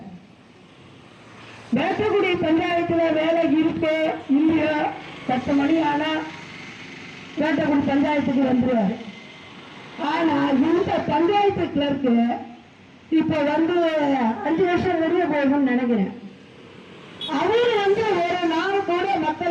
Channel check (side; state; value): both; identical; correlation 1.00